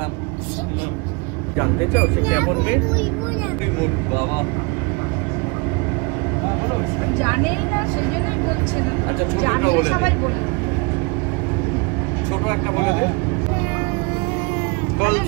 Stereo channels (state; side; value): quieter; left; 29.2 dB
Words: জানতে চাও সে কেমন মেয়ে? বাবা জানেই না সেই জন্যই বলছে না। আচ্ছা ছোটটা বলে দে, ছোট একটা বলে দে।